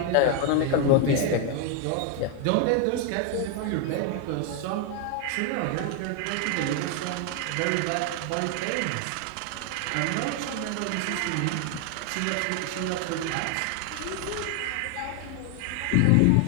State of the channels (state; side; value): different; both; correlation 0.01